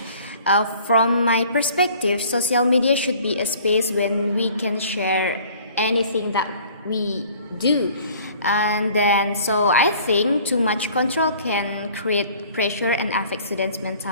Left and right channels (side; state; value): both; inverted; correlation -0.52